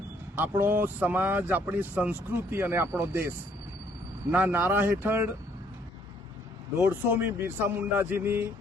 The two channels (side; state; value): both; normal; correlation 0.65